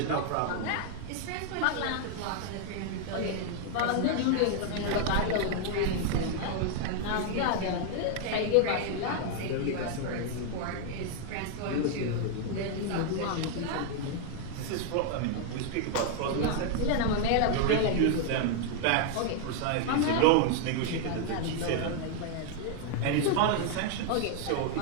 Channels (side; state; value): both; different; correlation 0.00